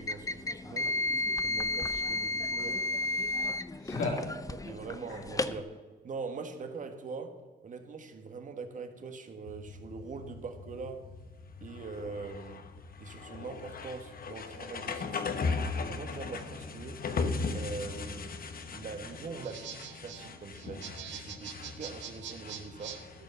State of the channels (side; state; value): both; normal; correlation 0.12